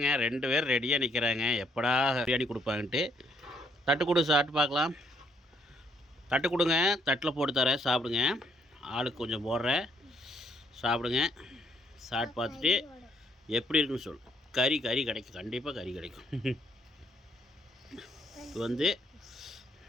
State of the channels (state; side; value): normal; both; correlation 0.70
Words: 2 பேர் ரெடியாக நிற்கிறாங்க, எப்படா பிரியாணி கொடுப்பாங்கன்ட்டு. தட்டு கொடு, சாப்பிட்டு பார்க்கலாம். தட்டு கொடுங்க, தட்டில் போட்டு தரேன், சாப்பிடுங்க. ஆளுக்கு கொஞ்சம் போடுறேன், சாப்பிடுங்க. சாப்பிட்டு பார்த்துட்டு எப்படி இருக்குன்னு சொல்லு. கறி கிடைக்கும், கண்டிப்பாக கறி கிடைக்கும். இது வந்து